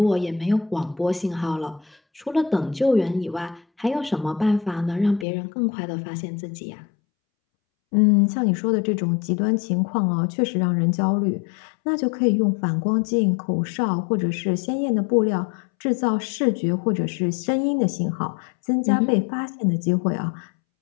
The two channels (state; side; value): drops out; right; at 5.2 s